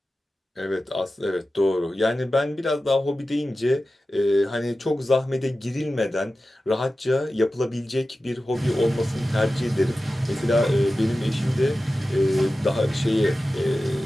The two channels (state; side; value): normal; both; correlation 0.94